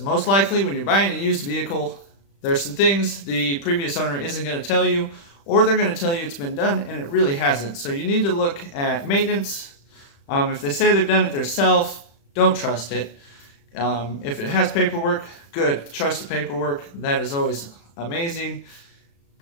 likely when you're buying a used vehicle, there's some things the previous owner isn't going to tell you, or they're going to tell you it's been done and it really hasn't. So you need to look at maintenance. If they say they've done it themselves, don't trust it. If it has paperwork, good. Trust the paperwork. That is always amazing.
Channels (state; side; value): late; right; 35 ms